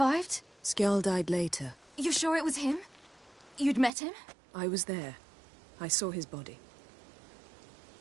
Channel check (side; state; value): left; drops out; at 3.9 s